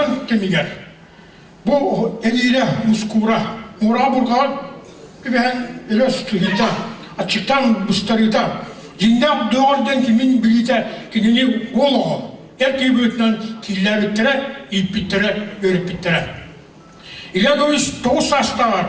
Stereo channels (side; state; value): both; identical; correlation 1.00